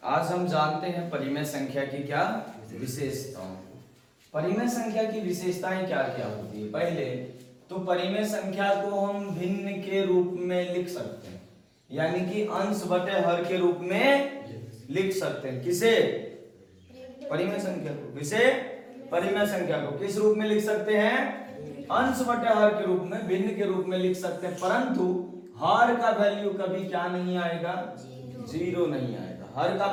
आज हम जानते हैं परिमेय संख्या की क्या विशेषताओं। परिमेय संख्या की विशेषताएं क्या क्या होती है। पहले तो परिमेय संख्या को हम भिन्न के रूप में लिख सकते हैं, यानी कि अंश बटे हर के रूप में लिख सकते हैं। किसे? परिमेय संख्या को। किसे? परिमेय संख्या को किस रूप में लिख सकते हैं? अंश बटे हर के रूप में, भिन्न के रूप में लिख सकते हैं। परंतु हर का वैल्यू कभी क्या नहीं आएगा? जीरो नहीं आएगा। हर का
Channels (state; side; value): identical; both; correlation 1.00